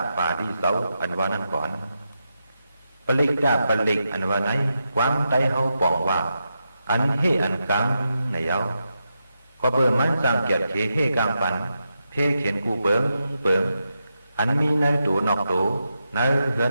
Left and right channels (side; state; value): both; inverted; correlation -0.87